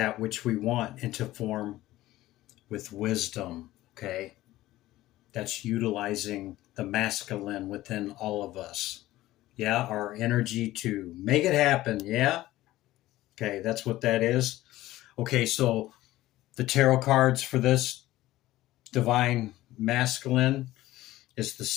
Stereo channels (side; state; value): right; quieter; 16.2 dB